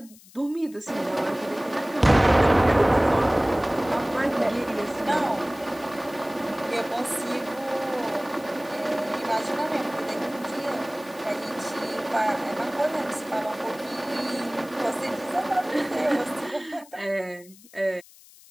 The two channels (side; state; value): left; noise; hiss, 23 dB below the sound